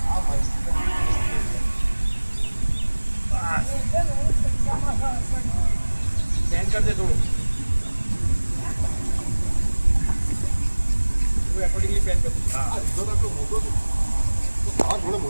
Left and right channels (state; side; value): inverted; both; correlation -1.00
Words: આ માઈક સ્ટેન્ડ कर दे થોડું वो अकॉर्डिंगली पेन कर। हां જો આટલો મોટો છે આ થોડો